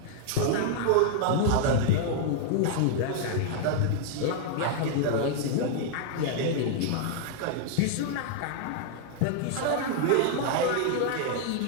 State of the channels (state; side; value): different; both; correlation 0.00